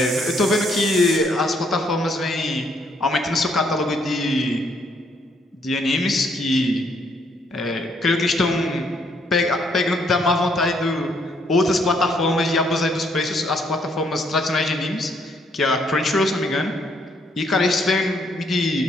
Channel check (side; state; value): both; normal; correlation 0.70